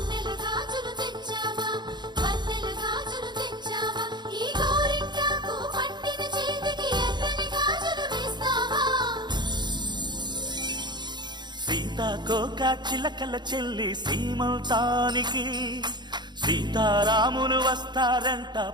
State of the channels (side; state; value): left; late; 0.21 ms